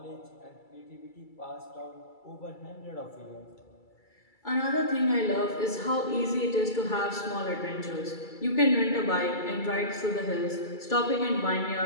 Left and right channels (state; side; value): late; right; 2.3 ms